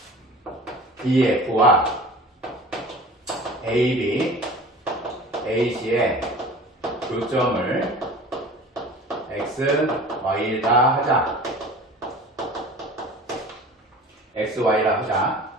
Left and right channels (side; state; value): both; normal; correlation 0.41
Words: DF와 AB, AC의 교점을 X, Y다 하자. X, Y라 하자.